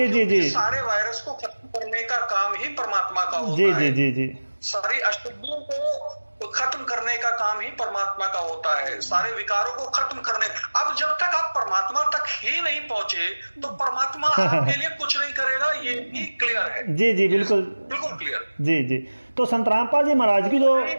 जी जी, सारे वायरस को खत्म करने का काम ही परमात्मा का होता जी है। जी जी जी, सारी अशुद्धियों को खत्म करने का काम ही परमात्मा का होता है, सारे विकारों को खत्म करने। अब जब तक आप परमात्मा तक ही नहीं पहुंचे तो परमात्मा आपके लिए कुछ नहीं करेगा, ये भी क्लियर है। जी जी बिल्कुल बिल्कुल क्लियर। जी जी। तो संत रामपाल जी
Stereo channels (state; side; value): inverted; both; correlation -1.00